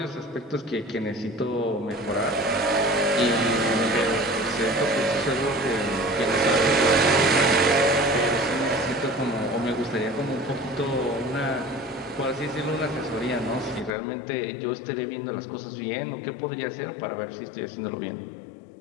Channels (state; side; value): drops out; right; at 13.9 s